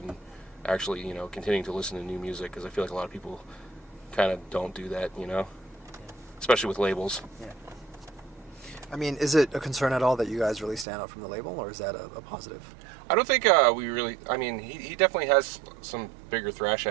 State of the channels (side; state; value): left; drops out; at 10.9 s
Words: actually, you know, continuing to listen to new music, because I feel like a lot of people kind of don't do that, you know, especially with labels. Yeah. I mean, is it a concern at all that you guys really stand out from the label, or is that a positive? I don't think we really... I mean, he definitely has some bigger thrash